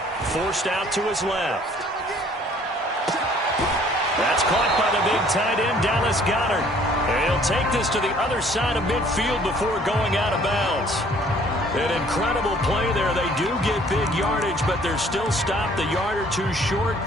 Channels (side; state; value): both; normal; correlation 0.57